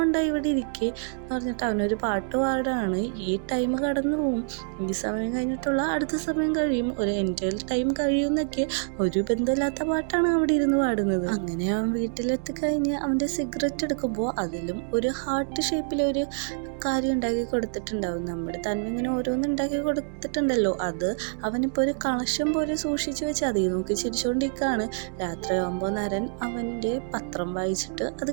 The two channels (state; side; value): silent; left; digital silence